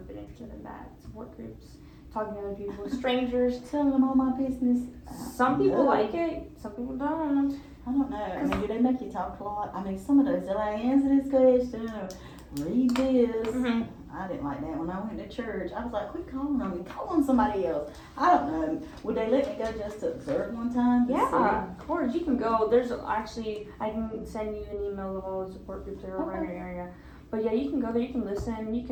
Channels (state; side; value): identical; both; correlation 1.00